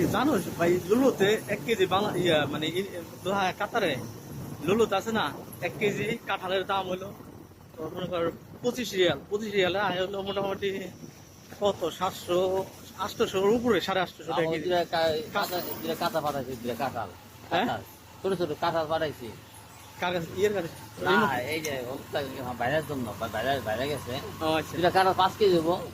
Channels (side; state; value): both; identical; correlation 1.00